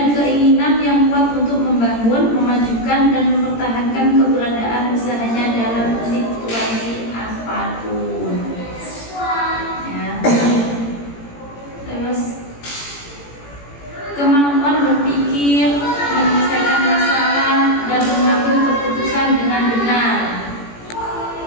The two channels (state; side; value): late; right; 18 ms